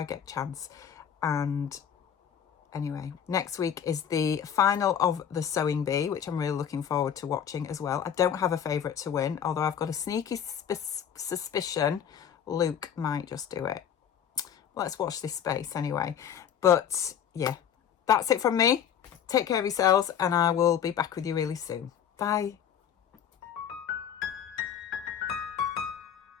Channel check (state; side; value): quieter; right; 8.7 dB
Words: get a chance. And anyway, next week is the final of the Sewing Bee, which I'm really looking forward to watching as well. I don't have a favourite to win, although I've got a sneaky suspicion Luke might just do it. Let's watch this space anyway. But yeah, that's it from me. Take care of yourselves, and I will be back with you really soon. Bye.